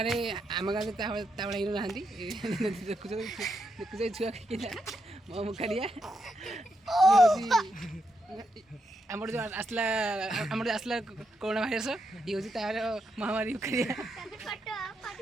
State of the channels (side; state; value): both; normal; correlation 0.81